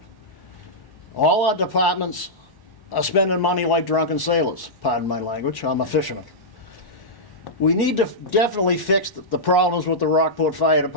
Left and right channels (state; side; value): late; right; 1.1 ms